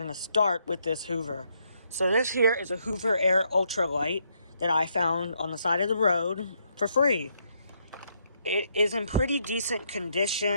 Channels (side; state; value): both; inverted; correlation -0.74